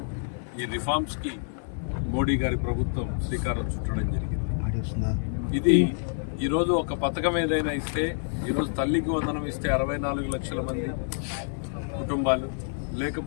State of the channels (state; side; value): silent; right; digital silence